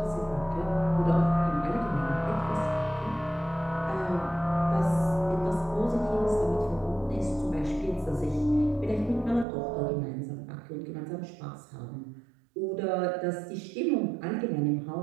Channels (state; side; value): drops out; left; at 9.5 s